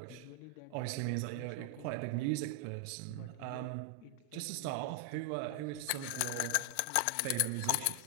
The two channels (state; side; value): different; both; correlation 0.00